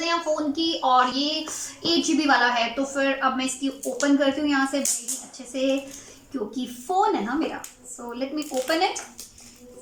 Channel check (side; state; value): both; identical; correlation 1.00